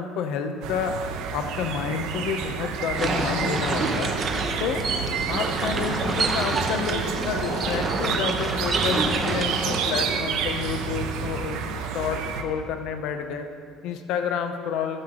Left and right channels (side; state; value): both; normal; correlation 0.46